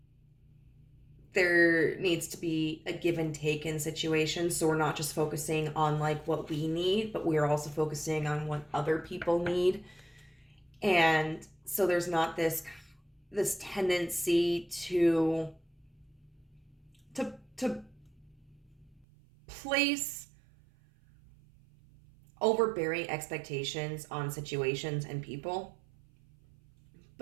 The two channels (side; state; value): left; drops out; at 19.1 s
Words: there needs to be a give and take in situations. So we're not just focusing on like what we need, but we are also focusing on what other people need. And so there's not this tendency to place overbearing expectations on situations and people.